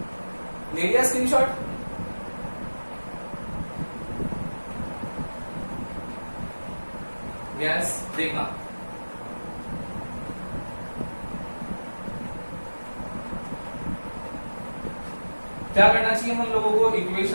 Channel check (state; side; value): inverted; both; correlation -1.00